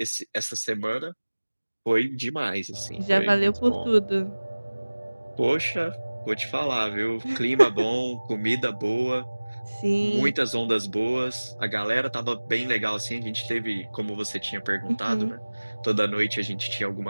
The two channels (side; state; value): both; inverted; correlation -1.00